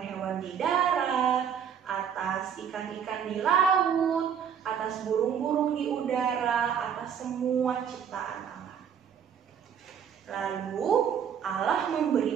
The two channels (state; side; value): quieter; left; 8.0 dB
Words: di darat, atas ikan-ikan di laut, atas burung-burung di udara, atas semua ciptaan Allah. Lalu Allah